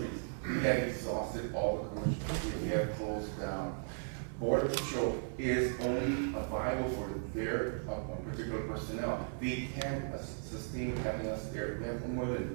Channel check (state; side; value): silent; left; 53 dB below the other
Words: We have exhausted all the commercial facilities. We have closed down. Border Patrol is only viable for their particular personnel. They can't sustain having us there. We have more